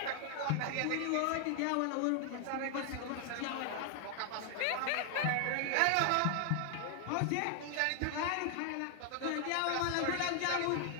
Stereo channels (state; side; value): different; both; correlation 0.00